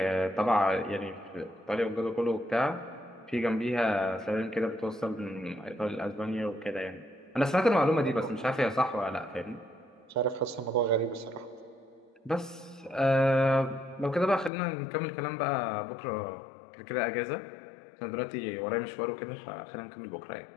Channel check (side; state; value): right; drops out; at 14.5 s